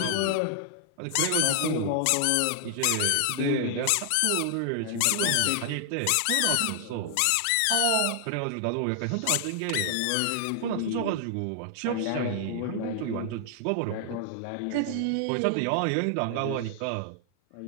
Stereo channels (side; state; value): both; different; correlation 0.00